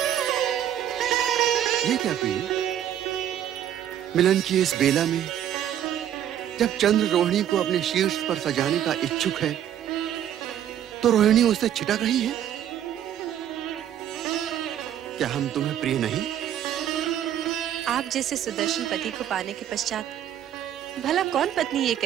ये क्या प्रिय, मिलन की इस बेला में जब चंद्र रोहिणी को अपने शीर्ष पर सजाने का इच्छुक है, तो रोहिणी उससे छिटक रही है। क्या हम तुम्हें प्रिय नहीं? आप जैसे सुदर्शन पति को पाने के पश्चात भला कौन पत्नी ये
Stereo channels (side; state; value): left; quieter; 10.6 dB